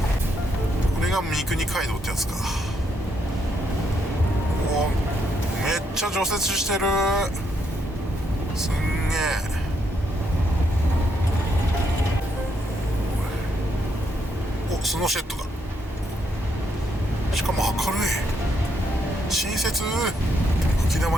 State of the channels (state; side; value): normal; both; correlation 0.76